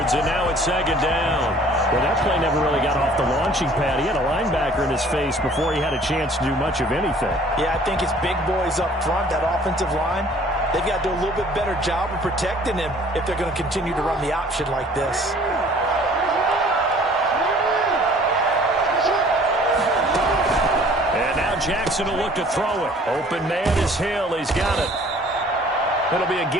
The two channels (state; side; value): normal; both; correlation 0.53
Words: and now it's 2nd down. Well, that play never really got off the launching pad. He had a linebacker in his face before he had a chance to do much of anything. Yeah, I think it's big boys up front, that offensive line. They've got to do a little bit better job of protecting him if they're going to continue to run the option like this. And now Jackson will look to throw it. Open man is Hill. He's got it. It'll be a